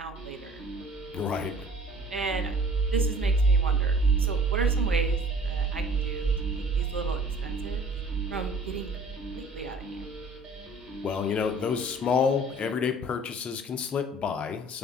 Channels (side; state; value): both; normal; correlation 0.50